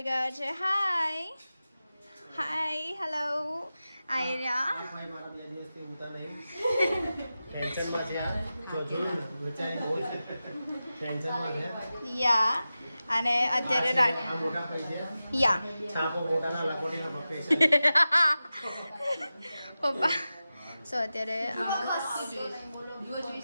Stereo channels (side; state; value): both; inverted; correlation -0.94